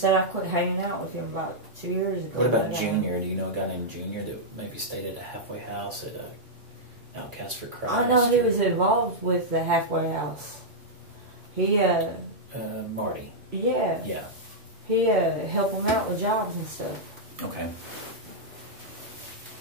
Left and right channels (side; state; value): both; normal; correlation -0.08